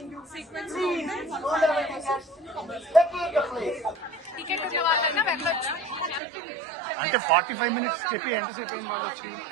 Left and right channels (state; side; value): drops out; left; at 6.2 s